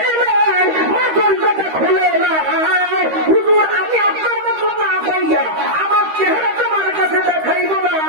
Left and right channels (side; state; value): left; late; 13 ms